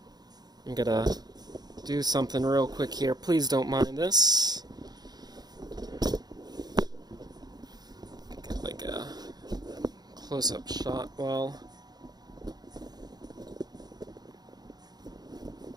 I'm gonna do something real quick here. Please don't mind this. Get like a close-up shot while...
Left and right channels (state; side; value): late; left; 0.19 ms